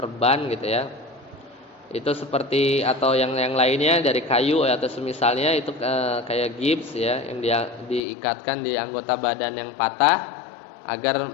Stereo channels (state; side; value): drops out; right; at 8.0 s